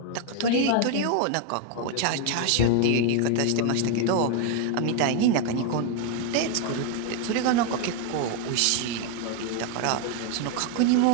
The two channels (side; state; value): both; different; correlation 0.01